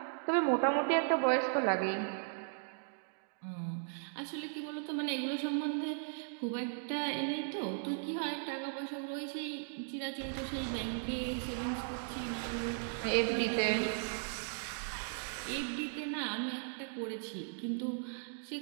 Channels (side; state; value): left; silent; digital silence